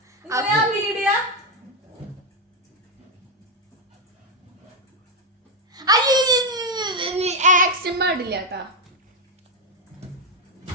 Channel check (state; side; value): normal; both; correlation 0.05